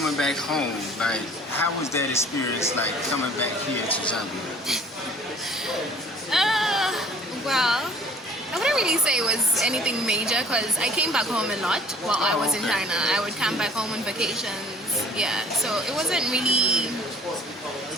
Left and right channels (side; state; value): both; normal; correlation 0.51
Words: back home, like how was that experience like coming back here to Zambia? Well, I wouldn't really say it was anything major because I came back home a lot while I was in China. I would come back home on vacations. Yeah, so it wasn't really